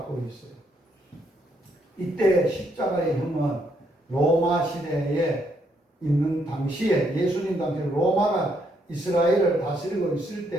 있어요. 이때 십자가의 형은 로마 시대에 있는 당시에 예수님 당시에 로마가 이스라엘을 다스리고 있을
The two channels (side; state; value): both; normal; correlation 0.73